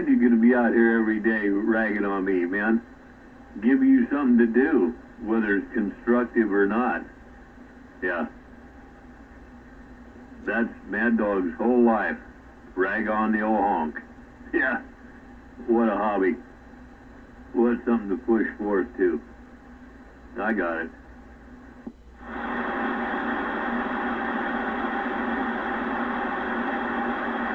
you're going to be out here every day ragging on me, man. Give you something to do, whether it's constructive or not. Yeah. That's Mad Dog's whole life. Rag on the old honk. Yeah. What a hobby. What something to push forth to. I got it.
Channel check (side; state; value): both; identical; correlation 1.00